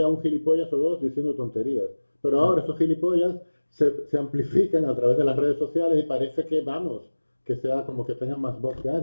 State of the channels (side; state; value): both; inverted; correlation -1.00